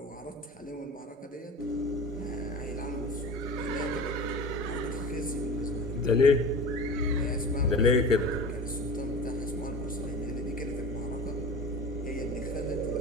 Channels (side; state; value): both; normal; correlation 0.35